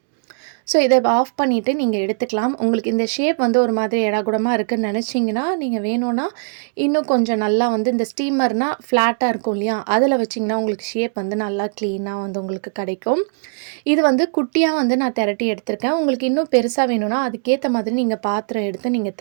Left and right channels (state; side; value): silent; left; digital silence